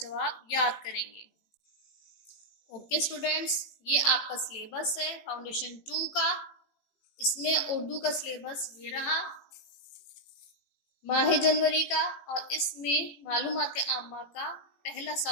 याद करेंगे। ओके स्टूडेंट्स, ये आपका सिलेबस है फाउंडेशन 2 का। इसमें उर्दू का सिलेबस ये रहा माह जनवरी का, और इसमें मालूमात आम्मा का पहला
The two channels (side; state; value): right; late; 18 ms